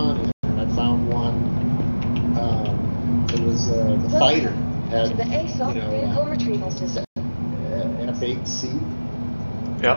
and I found one. It was the fighter had F8C.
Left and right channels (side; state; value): both; inverted; correlation -1.00